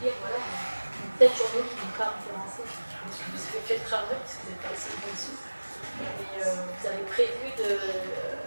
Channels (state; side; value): inverted; both; correlation -1.00